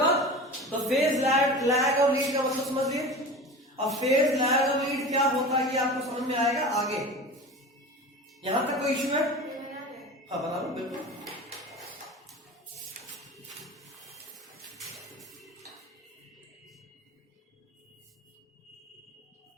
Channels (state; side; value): normal; both; correlation 0.33